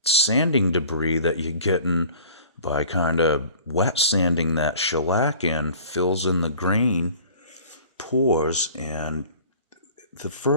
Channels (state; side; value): inverted; both; correlation -0.47